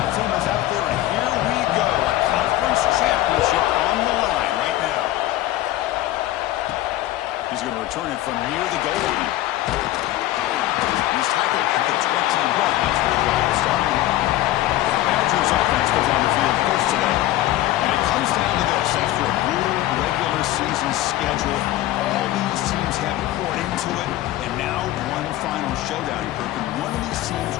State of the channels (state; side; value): quieter; right; 15.2 dB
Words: team is out there, and here we go. A conference championship on the line right now. He's going to return it from near the goal line. He's tackled at the 21. That's where the drive will start. The Badgers offense goes on the field first today. And it comes down to this. After a brutal regular season schedule, all these teams have poured into it. And now one final showdown, Kirk. And one of these teams